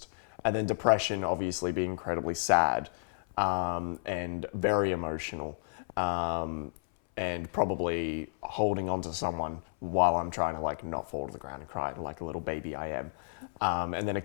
And then Depression obviously being incredibly sad, and very emotional, and probably holding on to someone while I'm trying to like not fall to the ground and cry like a little baby I am. And then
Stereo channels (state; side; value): silent; right; 57 dB below the other